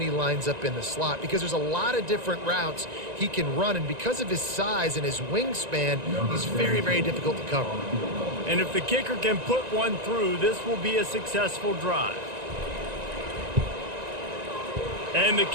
he lines up in the slot, because there's a lot of different routes he can run, and because of his size and his wingspan, he's very, very difficult to cover. And if the kicker can put one through, this will be a successful drive. And the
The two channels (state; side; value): late; left; 1.9 ms